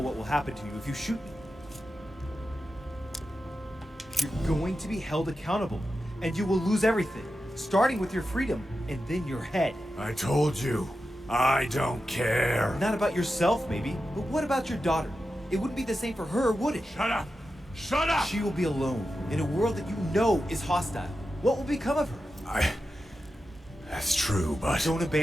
what will happen to you if you shoot me. You're going to be held accountable, and you will lose everything, starting with your freedom and then your head. I told you, I don't care. Not about yourself, maybe, but what about your daughter? It wouldn't be the same for her, would it? Shut up! Shut up! She will be alone in a world that you know is hostile. What will become of her? That's true, but... Don't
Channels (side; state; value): both; normal; correlation 0.90